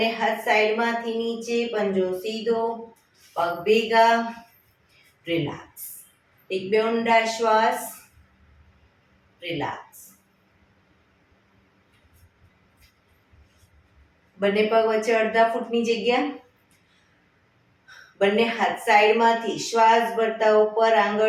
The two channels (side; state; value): both; identical; correlation 1.00